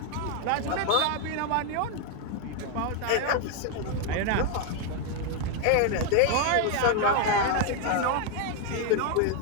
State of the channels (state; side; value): different; both; correlation 0.01